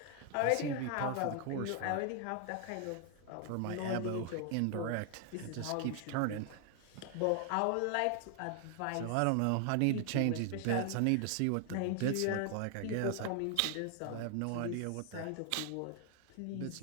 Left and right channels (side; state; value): both; different; correlation 0.00